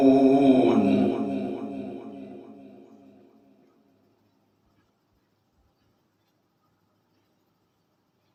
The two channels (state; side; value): identical; both; correlation 1.00